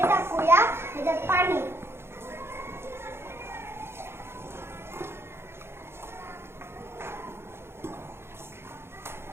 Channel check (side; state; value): left; late; 0.12 ms